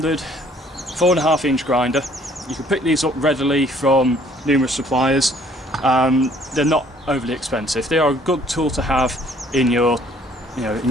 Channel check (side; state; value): both; normal; correlation 0.59